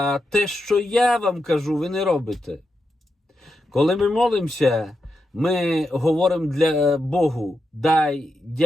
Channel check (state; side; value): normal; both; correlation 0.86